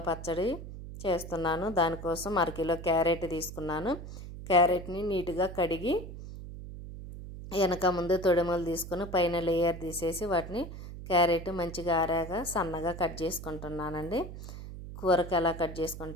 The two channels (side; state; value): right; noise; hum, 11 dB below the sound